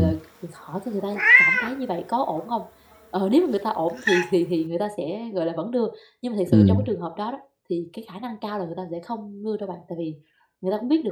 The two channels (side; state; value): both; identical; correlation 1.00